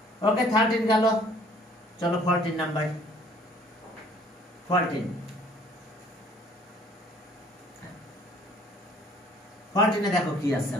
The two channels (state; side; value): normal; both; correlation 0.57